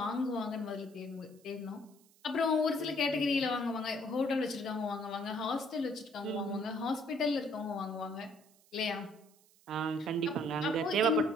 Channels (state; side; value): noise; right; hiss, 29 dB below the sound